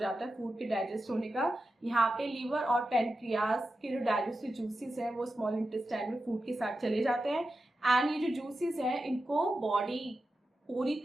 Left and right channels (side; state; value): both; normal; correlation 0.91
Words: है फूड के डाइजेस्ट होने का। यहाँ पे लीवर और पैनक्रियास के जो डाइजेस्टिव जूसेस हैं वो स्मॉल इंटेस्टाइन में फूड के साथ चले जाते हैं, एंड ये जो जूसेस हैं इनको बॉडी पूरी